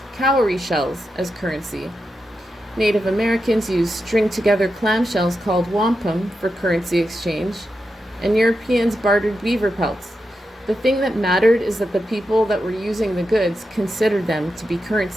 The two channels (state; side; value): normal; both; correlation 0.88